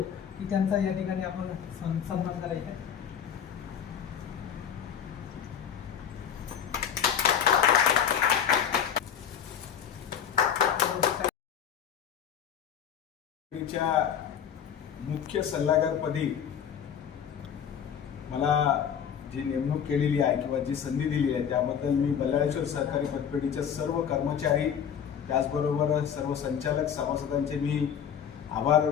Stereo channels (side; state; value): right; quieter; 8.4 dB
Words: की त्यांचा या ठिकाणी आपण सन्मान करायचा. मुख्य सल्लागारपदी मला जी नेमणूक केलेली आहे किंवा जी संधी दिली आहे त्याबद्दल मी बल्लाळेश्वर सहकारी पतपेढीच्या सर्व कर्मचारी त्याचबरोबर सर्व संचालक सभासदांचे मी आभार